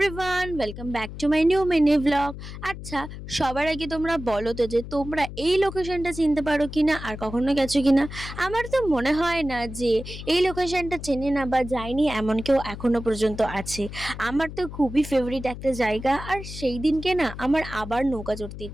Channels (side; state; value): left; noise; hum, 11 dB below the sound